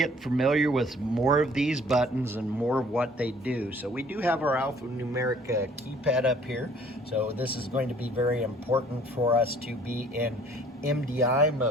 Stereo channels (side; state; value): both; normal; correlation 0.56